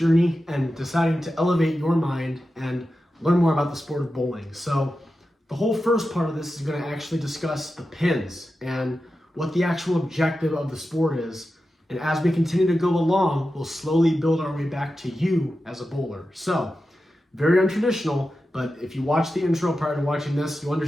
and deciding to elevate your mind and learn more about the sport of bowling. So the whole first part of this is going to actually discuss the pins and what the actual objective of the sport is. And as we continue to go along, we'll slowly build our way back to you as a bowler. So, very untraditional, but if you watch the intro prior to watching this, you'll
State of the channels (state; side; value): normal; both; correlation 0.92